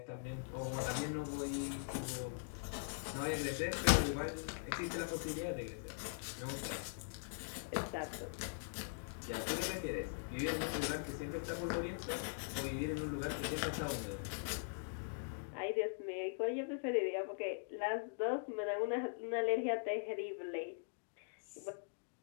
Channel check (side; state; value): right; silent; digital silence